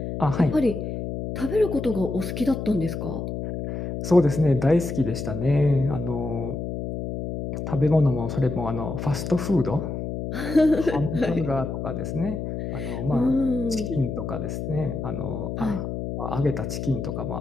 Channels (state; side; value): noise; left; hum, 5 dB below the sound